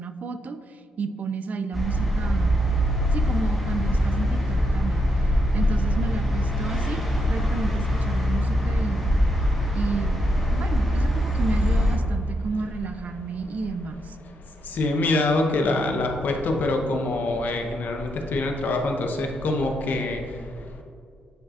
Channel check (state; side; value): normal; both; correlation 0.80